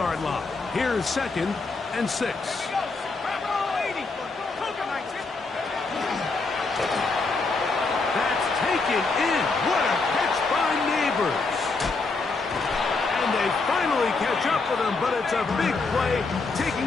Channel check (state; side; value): quieter; right; 3.9 dB